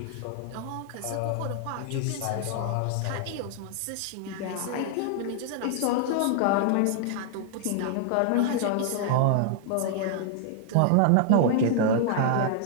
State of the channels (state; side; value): different; both; correlation -0.01